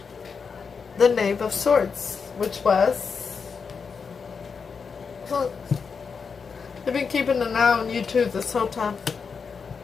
the Knave of Swords, which was... They've been keeping an eye on you too this whole time.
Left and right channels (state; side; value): quieter; right; 5.6 dB